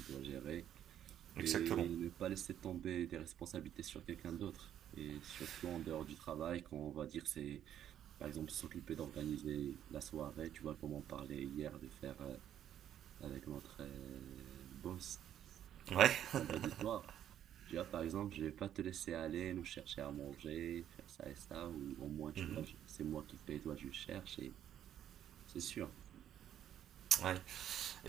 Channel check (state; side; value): quieter; left; 10.5 dB